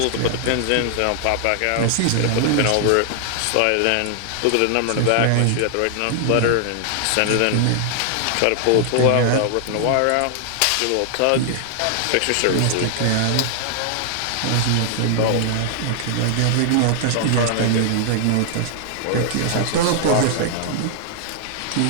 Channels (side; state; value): both; different; correlation 0.00